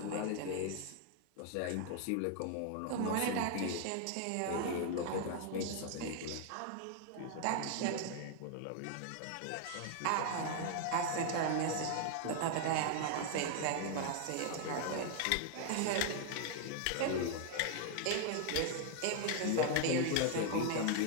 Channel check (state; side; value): different; both; correlation 0.00